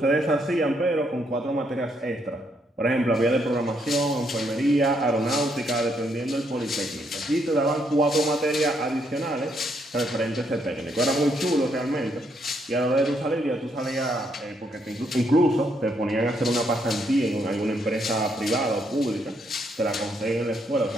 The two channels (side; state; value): both; normal; correlation 0.74